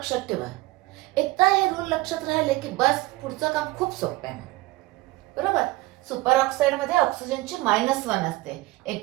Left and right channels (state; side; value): quieter; left; 19.9 dB